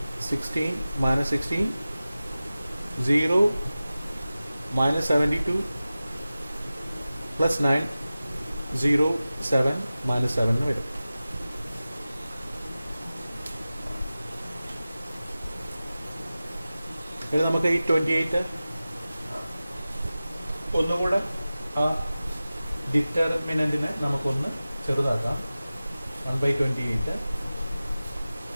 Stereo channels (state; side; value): inverted; both; correlation -0.96